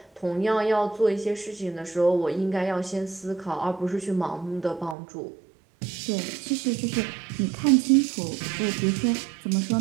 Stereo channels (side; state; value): left; drops out; at 5.0 s